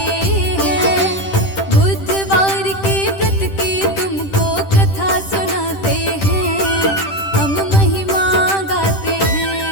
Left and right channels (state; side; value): late; right; 10 ms